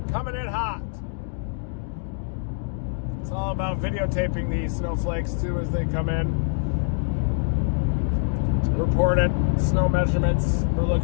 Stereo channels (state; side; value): silent; right; digital silence